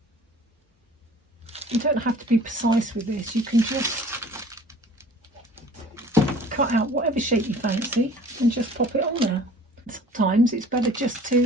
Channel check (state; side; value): normal; both; correlation 0.48